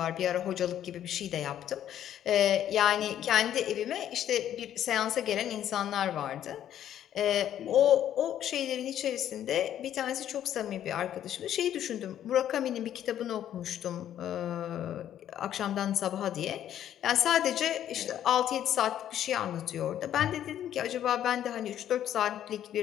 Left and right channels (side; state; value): right; quieter; 10.9 dB